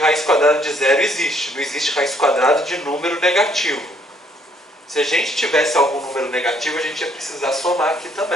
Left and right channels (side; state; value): both; normal; correlation 0.66